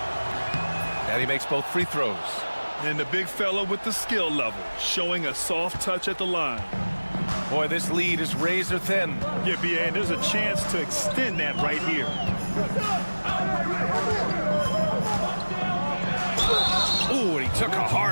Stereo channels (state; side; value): inverted; both; correlation -1.00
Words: And he makes both free throws. And the big fella with the skill level, showing a soft touch at the line. Boy, this lead is razor thin. Yeah, BA, and there's a chance to extend that right here. Ooh, and he took a